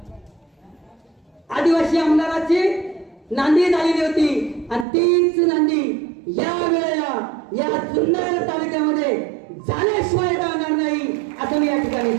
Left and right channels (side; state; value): left; drops out; at 4.9 s